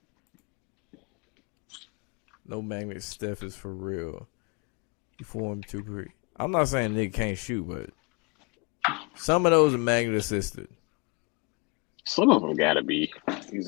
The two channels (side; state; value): right; quieter; 31.2 dB